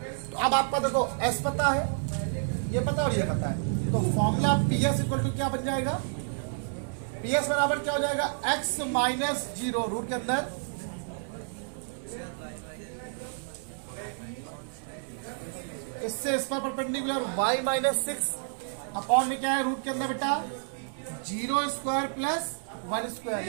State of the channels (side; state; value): left; silent; digital silence